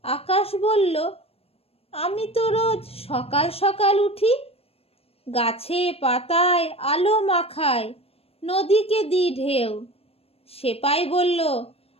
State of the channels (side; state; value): right; late; 0.28 ms